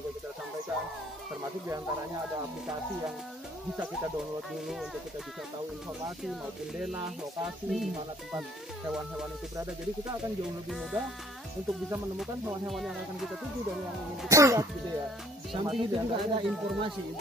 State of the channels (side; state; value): both; normal; correlation 0.58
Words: kita sampaikan, termasuk diantaranya ada aplikasi yang bisa kita download dulu untuk kita bisa tahu informasi maupun denah, lokasi di mana tempat hewan-hewan itu berada. Jadi kita akan jauh lebih mudah untuk bisa menemukan hewan-hewan yang akan kita tuju dan yang ingin kita lihat gitu ya. Samping itu juga ada informasi